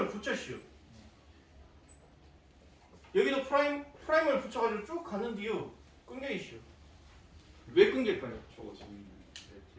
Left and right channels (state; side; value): identical; both; correlation 1.00